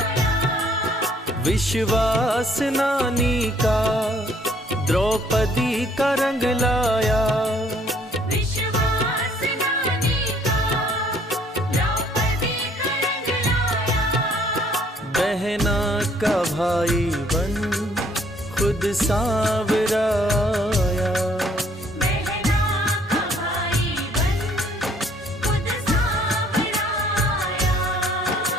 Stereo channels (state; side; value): normal; both; correlation 0.62